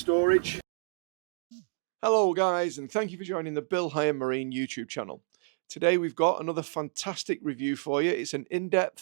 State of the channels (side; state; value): left; silent; digital silence